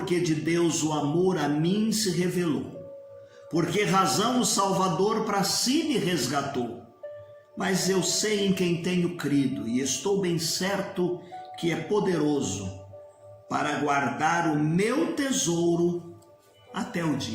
que de Deus o amor a mim se revelou, por que razão o Salvador para si me resgatou. Mas eu sei em quem tenho crido e estou bem certo que é poderoso para guardar o meu tesouro até o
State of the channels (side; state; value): both; identical; correlation 1.00